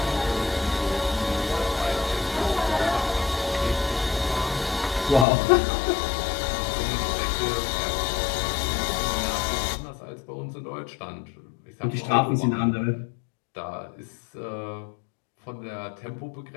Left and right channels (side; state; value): right; drops out; at 5.2 s